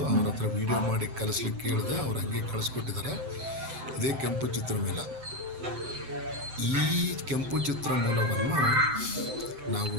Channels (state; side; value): late; left; 7.8 ms